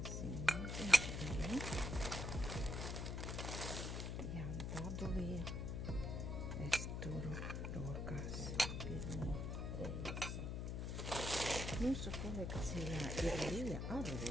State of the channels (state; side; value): noise; left; hum, 2 dB below the sound